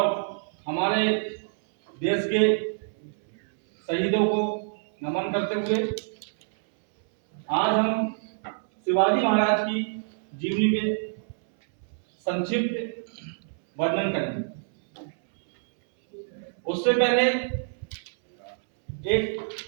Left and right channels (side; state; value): left; silent; 61 dB below the other